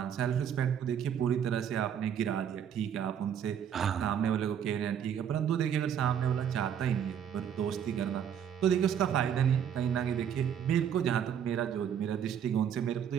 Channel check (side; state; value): left; quieter; 8.7 dB